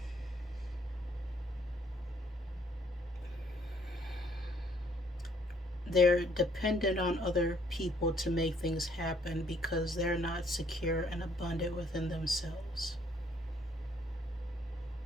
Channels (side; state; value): both; normal; correlation 0.65